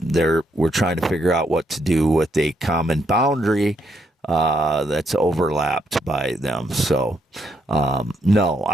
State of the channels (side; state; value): both; normal; correlation 0.75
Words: trying to figure out what to do with a common boundary that's overlapped by them. So, no,